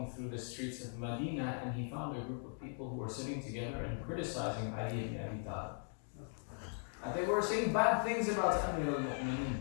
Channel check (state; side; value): silent; right; 52 dB below the other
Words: through the streets of Medina and he found a group of people who were sitting together and criticizing Ali ibn Abi Talib. And they were saying bad things about Amir al-Mu'mineen.